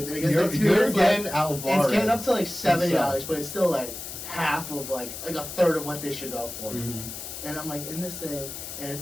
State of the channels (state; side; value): noise; left; hiss, 9 dB below the sound